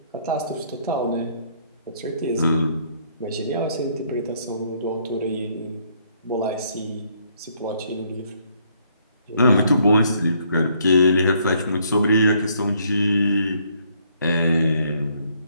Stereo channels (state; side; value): inverted; both; correlation -0.68